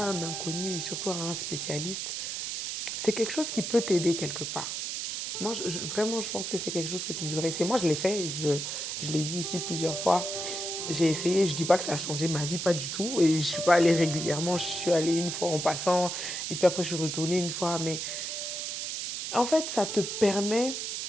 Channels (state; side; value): noise; right; hiss, 4 dB below the sound